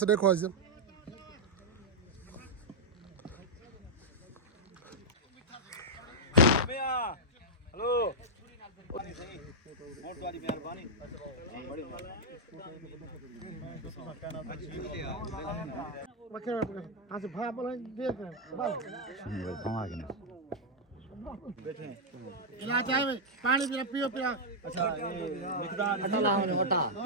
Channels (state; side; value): normal; both; correlation -0.05